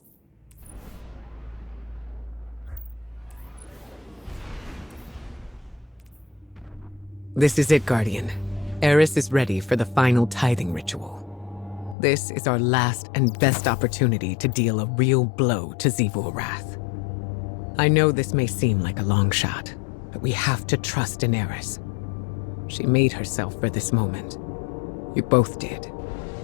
This is it, Guardian. Eris is ready for the final tithing ritual. This is our last and best opportunity to deal a real blow to Xivu-Arath. I know this may seem like a long shot, but we have to trust in Eris. She made herself for this moment. You both did.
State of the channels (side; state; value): right; drops out; at 12.0 s